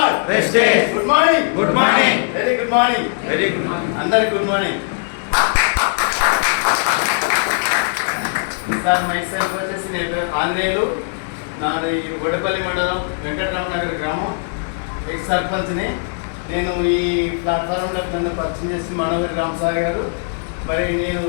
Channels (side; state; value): right; silent; 56 dB below the other